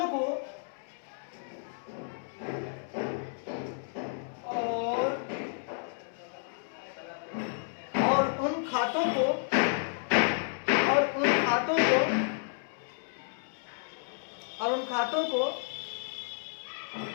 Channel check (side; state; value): right; silent; digital silence